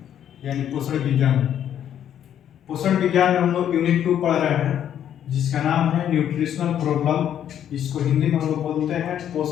यानी पोषण विज्ञान। पोषण विज्ञान में हम लोग यूनिट 2 पढ़ रहे हैं जिसका नाम है न्यूट्रिशनल प्रॉब्लम। इसको हिंदी में हम लोग बोलते हैं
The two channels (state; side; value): quieter; right; 10.0 dB